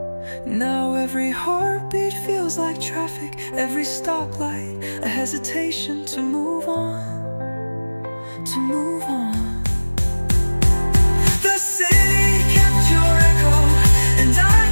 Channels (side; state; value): both; inverted; correlation -1.00